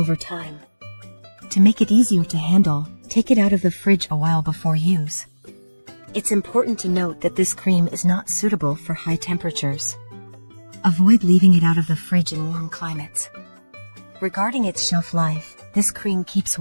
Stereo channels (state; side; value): inverted; both; correlation -1.00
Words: time. To make it easier to handle, take it out of the fridge a while before use. It's important to note that this cream is not suitable for high temperatures. Avoid leaving it out of the fridge in warm climates. Regarding its shelf life, this cream keeps